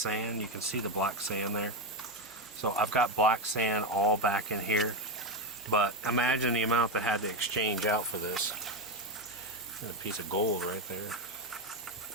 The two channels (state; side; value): normal; both; correlation 0.11